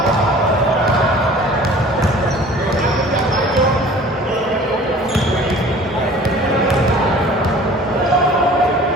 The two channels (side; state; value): both; normal; correlation 0.47